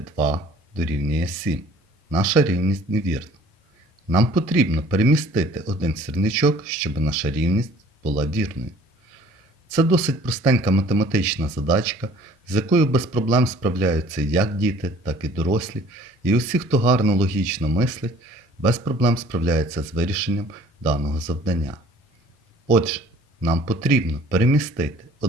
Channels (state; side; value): normal; both; correlation 0.52